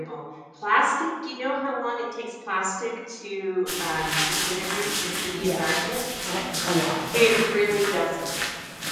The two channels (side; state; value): both; identical; correlation 1.00